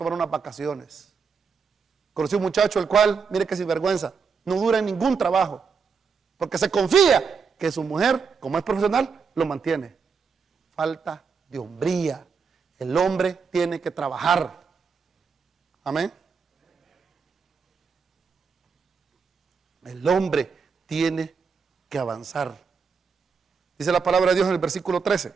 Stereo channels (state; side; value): quieter; left; 5.6 dB